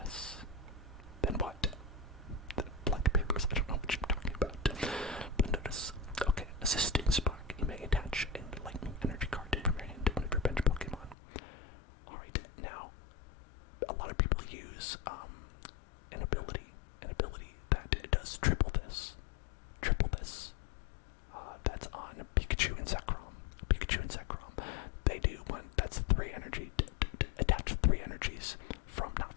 Then what? The blank papers, I don't know what you're talking about. Thunderous. Okay, Assisting Spark. You may attach a lightning energy card from your hand to one of your bench Pokemon. Alright, now, a lot of people use an ability that does triple this. That's on Pikachu and Zekrom. They do one that's 3 energy. Attach 3 energies not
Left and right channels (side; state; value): right; drops out; at 11.2 s